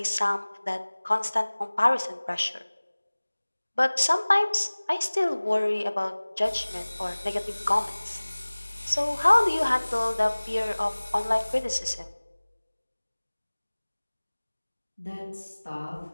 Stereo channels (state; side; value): inverted; both; correlation -1.00